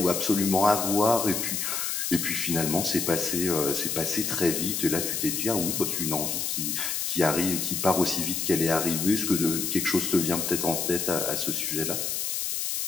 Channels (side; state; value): left; noise; hiss, 1 dB below the sound